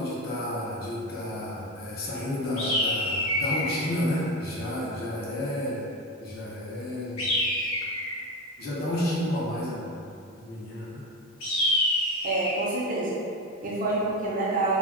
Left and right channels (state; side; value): normal; both; correlation 0.19